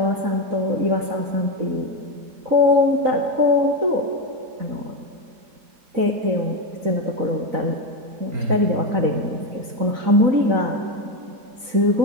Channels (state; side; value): late; left; 4.0 ms